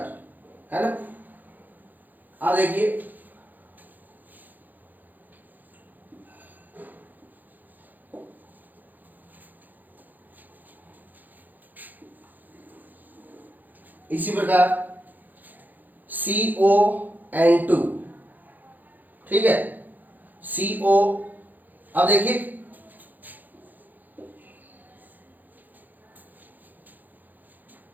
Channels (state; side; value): late; left; 0.085 ms